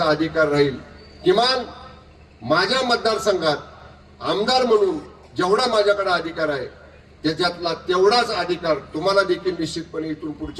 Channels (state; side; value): identical; both; correlation 1.00